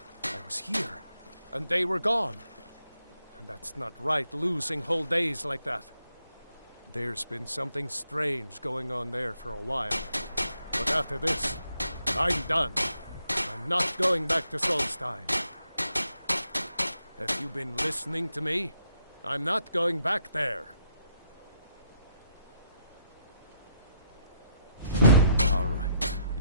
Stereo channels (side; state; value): both; inverted; correlation -0.75